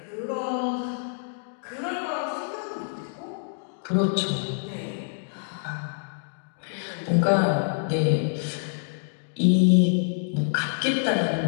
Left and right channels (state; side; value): silent; right; digital silence